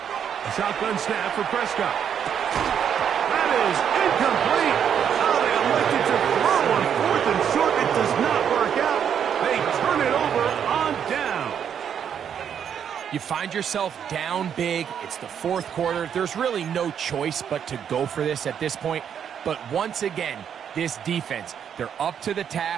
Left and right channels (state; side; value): quieter; left; 8.4 dB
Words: shotgun snap for Prescott. That is incomplete. Oh, they elected to throw on 4th and short. It does not work out. They turn it over on down. You find yourself down big. It's the fourth quarter. There's really no choice but to go for this at this point. But once again, this defense, they're up to the